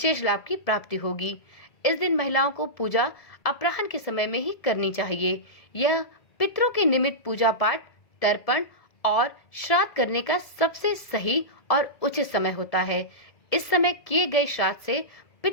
लाभ की प्राप्ति होगी। इस दिन महिलाओं को पूजा अपराह्न के समय में ही करनी चाहिए। यह पितरों के निमित्त पूजा पाठ, तर्पण और श्राद्ध करने का सबसे सही और उचित समय होता है। इस समय किए गए श्राद्ध से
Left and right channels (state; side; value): late; right; 1.7 ms